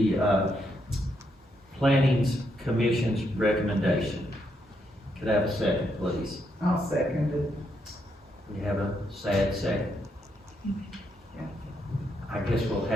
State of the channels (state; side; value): normal; both; correlation 0.78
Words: Planning Commission's recommendation. Could I have a second, please? I'll second it. We have a sad second. I guess we'll